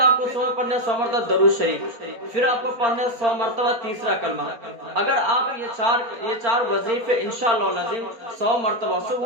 کو صبح پڑھنے 100 مرتبہ درود شریف، پھر آپ کو پڑھنے 100 مرتبہ تیسرا کلمہ۔ اگر آپ یہ چار وظیفے انشاءاللہ العظیم 100 مرتبہ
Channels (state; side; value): late; left; 4.4 ms